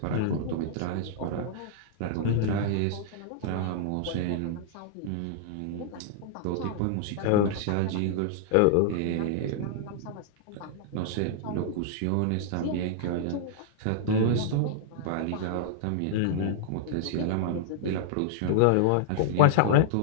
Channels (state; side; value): different; both; correlation -0.01